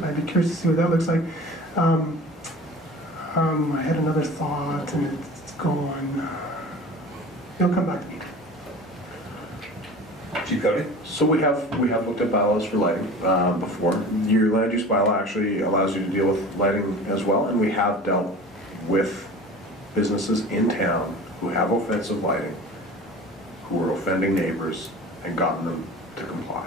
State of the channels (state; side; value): normal; both; correlation 0.39